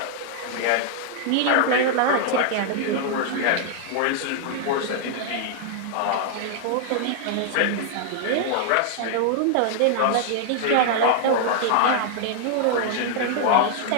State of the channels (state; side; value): different; both; correlation -0.01